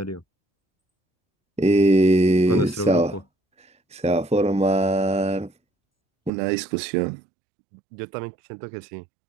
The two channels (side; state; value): left; drops out; at 6.3 s